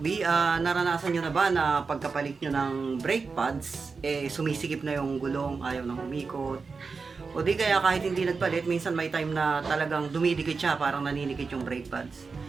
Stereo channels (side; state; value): left; quieter; 4.7 dB